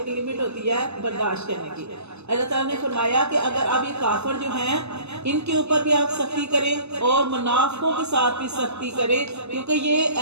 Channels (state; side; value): late; left; 0.80 ms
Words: لیمٹ ہوتی ہے برداشت کرنے کی۔ اللہ تعالیٰ نے فرمایا کہ اگر اب یہ کافر جو ہیں ان کے اوپر بھی آپ سختی کریں اور منافقوں کے ساتھ بھی سختی کریں، کیونکہ یہ